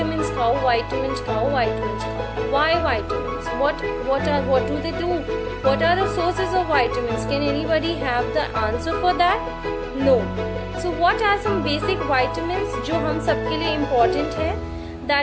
खाओ. Why vitamins? What do they do? What are the sources of vitamins? Can anybody have the answer for that? No. So what are some basic vitamins जो हम सबके लिए important है?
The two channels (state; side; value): identical; both; correlation 1.00